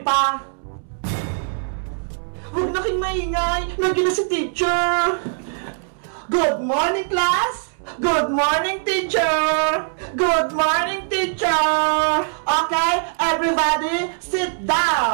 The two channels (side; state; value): left; silent; 65 dB below the other